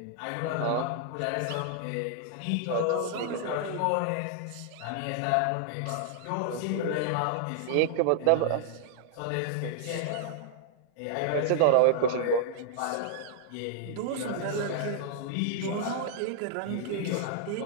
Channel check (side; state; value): both; different; correlation -0.01